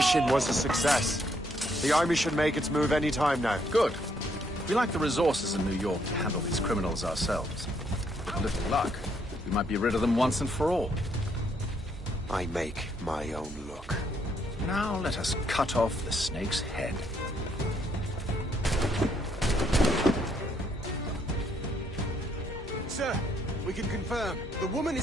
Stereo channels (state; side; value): normal; both; correlation 0.71